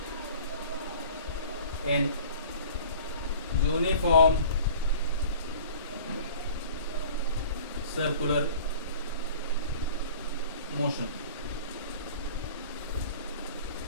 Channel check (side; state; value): both; inverted; correlation -0.44